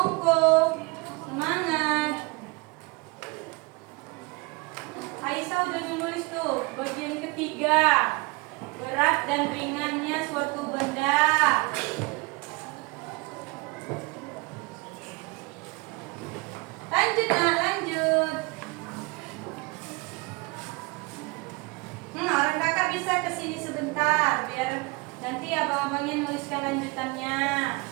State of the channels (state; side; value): quieter; left; 26.2 dB